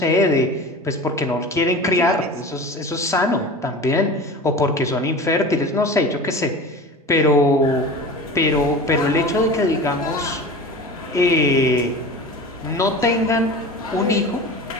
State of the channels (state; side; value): normal; both; correlation 0.34